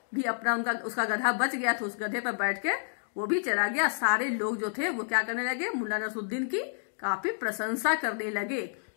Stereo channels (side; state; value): right; silent; digital silence